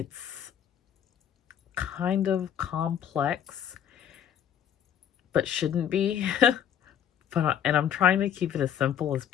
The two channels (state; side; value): quieter; right; 9.4 dB